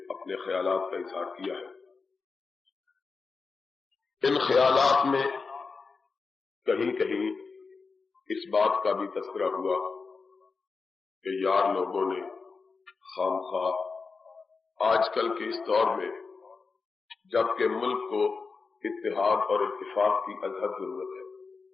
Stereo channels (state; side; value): quieter; right; 4.6 dB